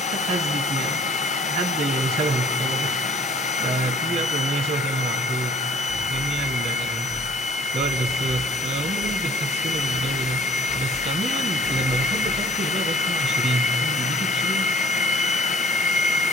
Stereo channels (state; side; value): normal; both; correlation 0.52